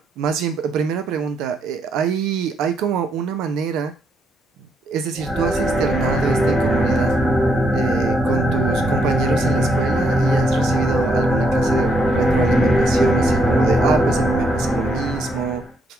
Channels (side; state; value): both; normal; correlation 0.75